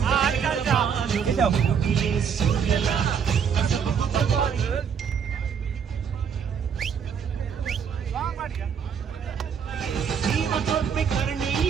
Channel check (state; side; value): quieter; left; 7.2 dB